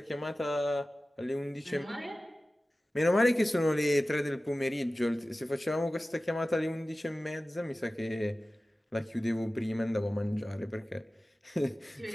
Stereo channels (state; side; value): normal; both; correlation 0.96